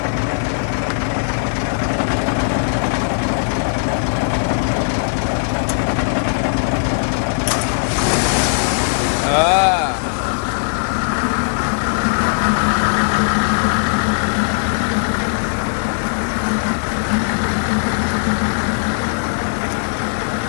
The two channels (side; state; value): right; silent; digital silence